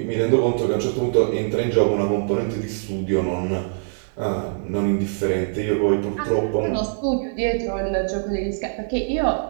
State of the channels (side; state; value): left; silent; digital silence